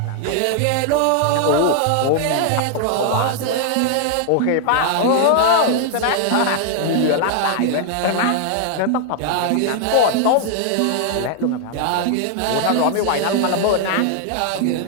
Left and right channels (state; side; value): different; both; correlation 0.00